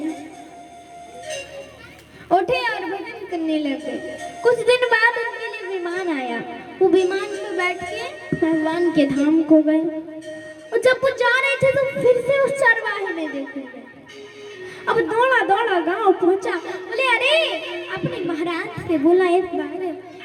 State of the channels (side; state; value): both; identical; correlation 1.00